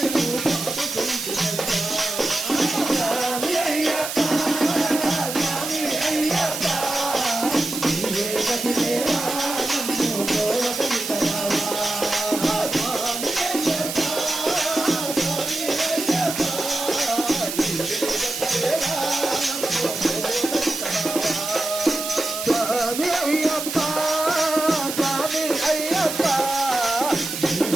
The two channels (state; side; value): noise; right; hiss, 5 dB below the sound